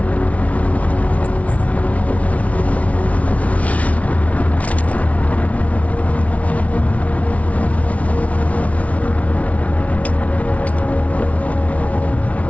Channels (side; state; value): right; late; 0.066 ms